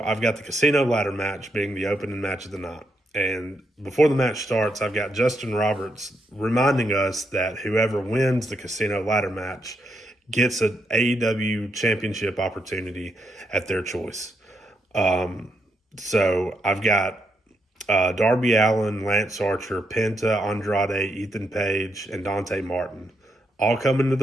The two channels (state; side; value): normal; both; correlation 0.80